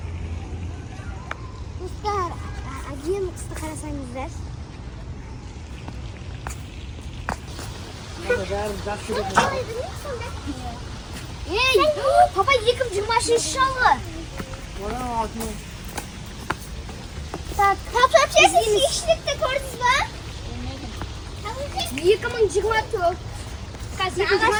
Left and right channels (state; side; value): identical; both; correlation 1.00